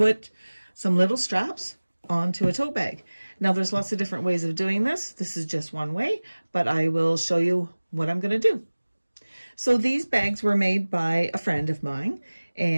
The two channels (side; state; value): both; inverted; correlation -1.00